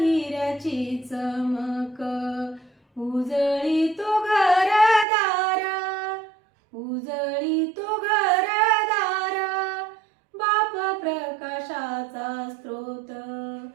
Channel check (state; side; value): drops out; left; at 5.1 s